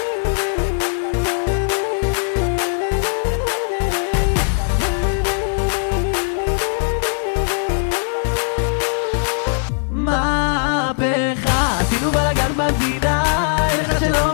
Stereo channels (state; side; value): silent; right; digital silence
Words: מהפכה, עשינו בלגן במדינה, אין אחד שלא